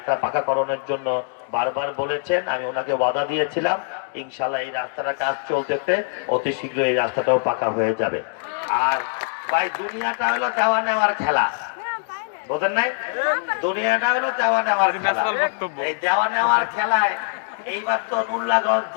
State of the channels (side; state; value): right; silent; 63 dB below the other